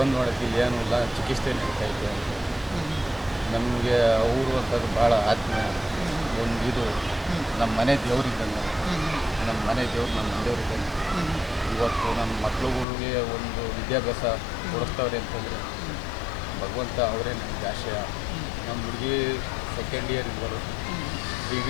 ನೋಡೋಕ್ಕೆ ಏನೂ ಇಲ್ಲ, ಚಿಕಿತ್ಸೆ ನಡೀತಾಯಿತ್ತು ಅಂತ. ನಮಗೆ ಅವರು ಅಂತಂದ್ರೆ ಭಾಳ ಆತ್ಮೀಯ. ಒಂದು ಇದು ನಮ್ಮ ಮನೆ ದೇವ್ರಿದ್ದಂಗೆ, ನಮ್ಮ ಮನೆ ದೇವ್ರು ನಮ್ಮ ದೇವ್ರಿದ್ದಂಗೆ. ಇವತ್ತು ನಮ್ಮ ಮಕ್ಳುಗಳಿಗೆ ಒಂದು ವಿದ್ಯಾಭ್ಯಾಸ ಕೊಡಿಸ್ತವ್ರೆ ಅಂತಂದರೆ ಭಗವಂತ ಅವರೇ ನಮಗೆ ಆಶಯ. ನಮ್ಮ ಹುಡುಗಿ ಸೆಕೆಂಡ್ ಇಯರ್ ಇದ್ದರು,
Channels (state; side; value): drops out; right; at 12.9 s